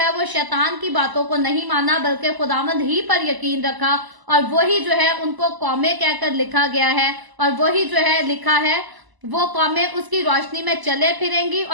वो शैतान की बातों को नहीं माना, बल्कि खुदावंद ही पर यकीन रखा। और वही जो है उनको कौमें कहकर लिखा गया है, और वही जो है लिखा है वो कौमें उसकी रोशनी में चले फिरेंगी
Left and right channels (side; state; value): left; late; 1.0 ms